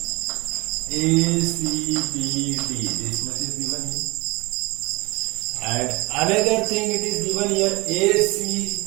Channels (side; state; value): left; quieter; 24.6 dB